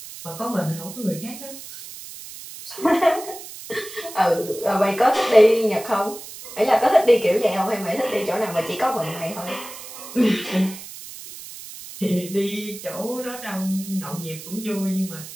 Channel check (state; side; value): noise; right; hiss, 13 dB below the sound